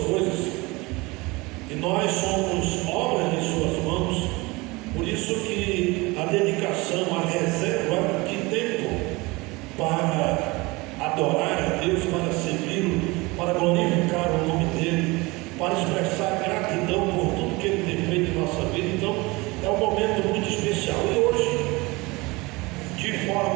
coisas, e nós somos obras de suas mãos. Por isso que a dedicação, a reserva de tempo para adorar a Deus, para servi-lo, para glorificar o nome dele, para expressar gratidão por tudo que ele tem feito em nossa vida. Então é um momento muito especial, e hoje, de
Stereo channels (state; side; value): quieter; left; 23.7 dB